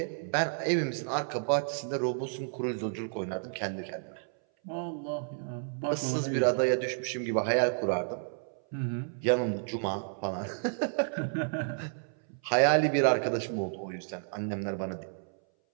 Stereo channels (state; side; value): silent; left; 57 dB below the other